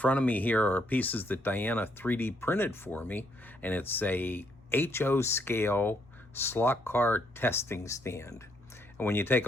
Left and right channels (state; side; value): normal; both; correlation 0.72